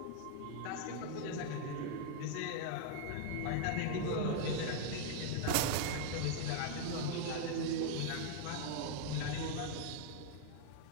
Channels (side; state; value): both; different; correlation 0.00